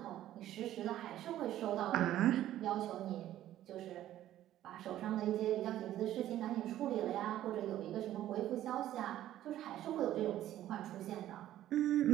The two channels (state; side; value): quieter; left; 13.0 dB